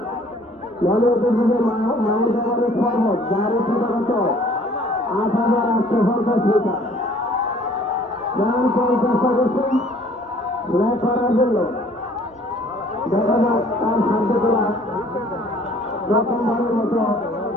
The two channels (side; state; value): right; noise; rumble, 30 dB below the sound